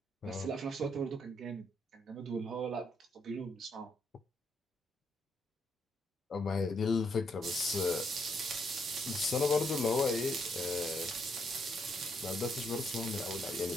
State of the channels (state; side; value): normal; both; correlation 0.75